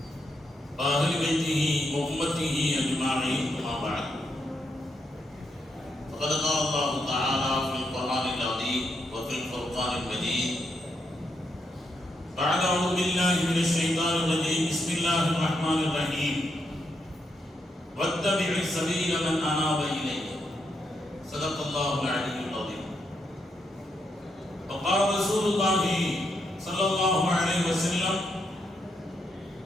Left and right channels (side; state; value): both; normal; correlation 0.80